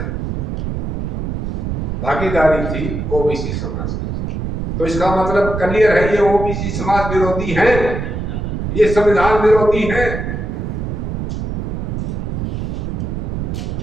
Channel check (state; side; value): noise; right; rumble, 3 dB below the sound